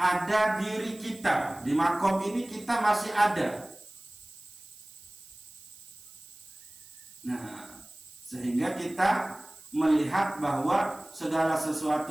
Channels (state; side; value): noise; right; hiss, 20 dB below the sound